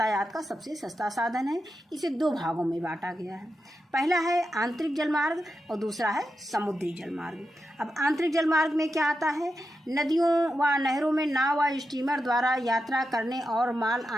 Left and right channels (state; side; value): normal; both; correlation 0.88